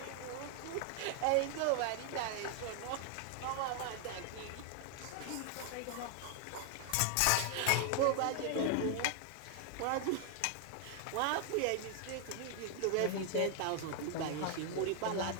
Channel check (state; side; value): different; both; correlation 0.00